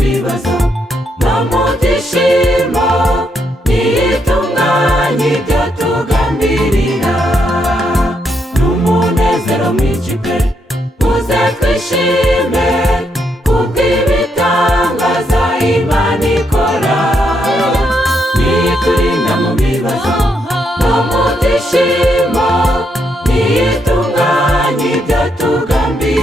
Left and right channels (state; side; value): normal; both; correlation 0.78